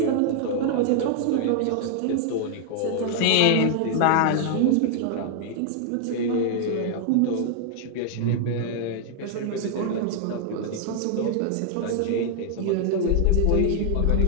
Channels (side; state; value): both; different; correlation 0.00